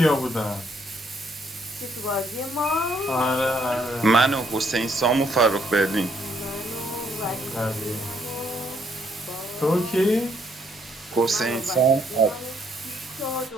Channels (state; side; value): normal; both; correlation 0.70